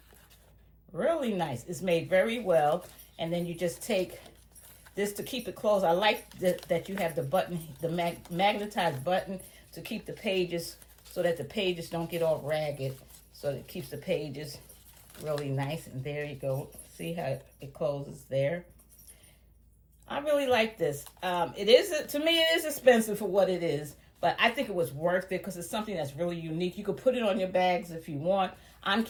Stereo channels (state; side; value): identical; both; correlation 1.00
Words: Really nice. It's made very well. And then you just take this to keep it closed. I like that you have the button, the magnetized button to keep the pages so that the pages don't get all ragged. So it keeps the pages really nice. And there you go. See how it closes there. I really like this. It is, to me, it is expensive for what it is, but I think it was worth it because it's something that's really unique. You could put it on your bags if you want. I'm